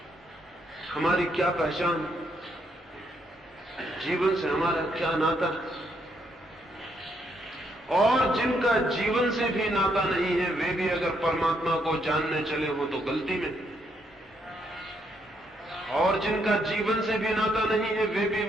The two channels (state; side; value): normal; both; correlation 0.75